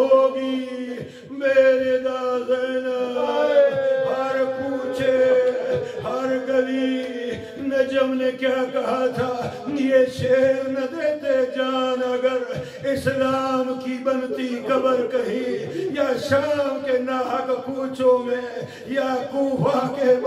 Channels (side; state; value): both; identical; correlation 1.00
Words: میرے دا زینب۔ ہر کوچے ہر گلی نجم نے کیا کہا تھا، یہ شیر نہ دیتے جان اگر اسلام کی بنتی قبر کہیں، یا شام کے ناحق کوچوں میں، یا کوفہ کے